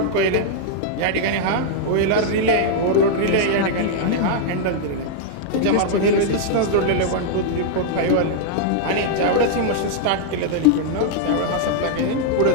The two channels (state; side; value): different; both; correlation -0.01